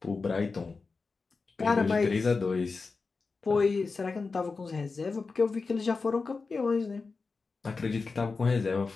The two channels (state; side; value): quieter; right; 4.3 dB